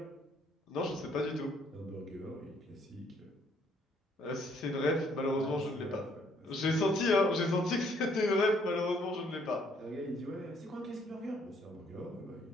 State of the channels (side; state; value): both; normal; correlation 0.66